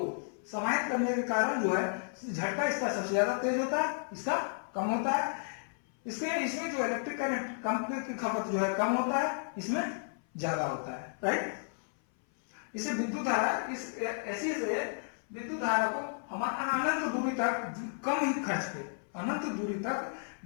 समाहित करने के कारण जो है झटका इसका सबसे ज्यादा तेज होता है, इसका कम होता है। इसमें जो इलेक्ट्रिक करंट की खपत जो है कम होता है, इसमें ज्यादा होता है, राइट। इसे विद्युत धारा ऐसी से विद्युत धारा को हम अनंत दूरी तक कम ही खर्च पे, अनंत दूरी तक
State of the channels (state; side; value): silent; right; 56 dB below the other